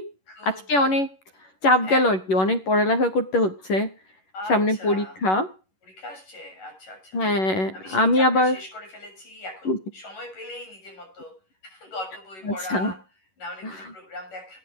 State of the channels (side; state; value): right; late; 11 ms